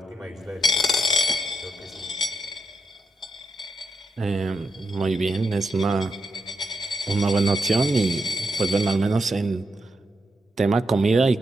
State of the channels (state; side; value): normal; both; correlation 0.83